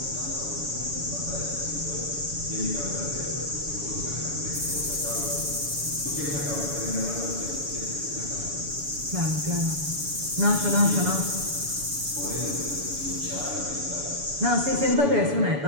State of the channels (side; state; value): left; late; 7.0 ms